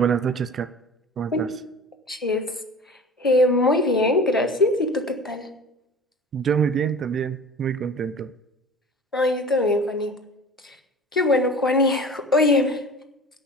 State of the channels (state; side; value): normal; both; correlation 0.39